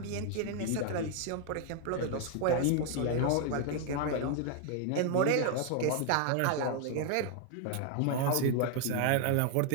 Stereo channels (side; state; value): both; different; correlation 0.00